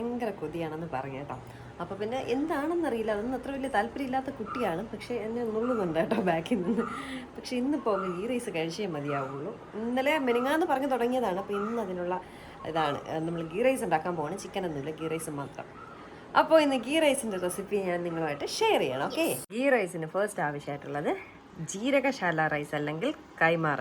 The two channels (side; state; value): both; identical; correlation 1.00